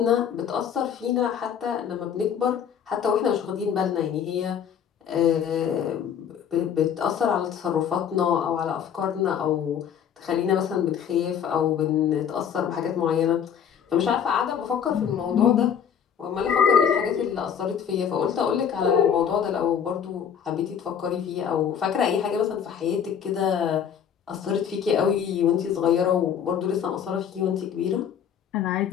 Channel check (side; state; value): right; quieter; 8.2 dB